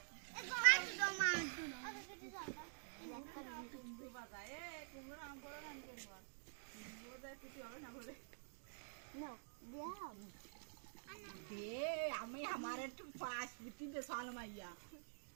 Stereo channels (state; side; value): silent; left; digital silence